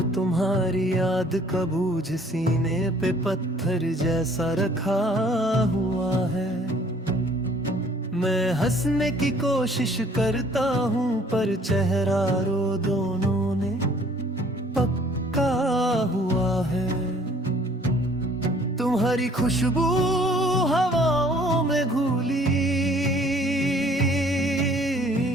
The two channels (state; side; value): normal; both; correlation 0.57